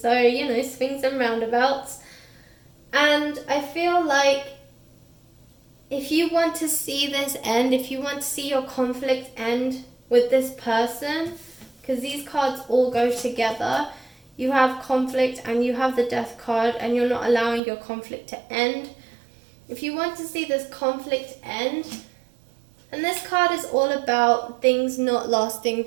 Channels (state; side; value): drops out; left; at 17.6 s